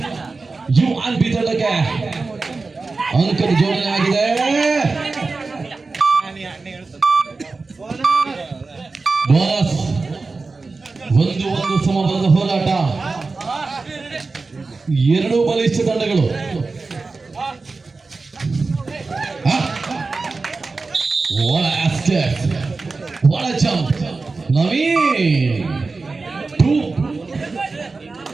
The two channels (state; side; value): quieter; left; 3.9 dB